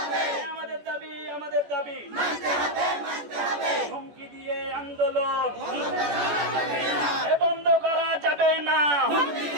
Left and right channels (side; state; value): left; late; 14 ms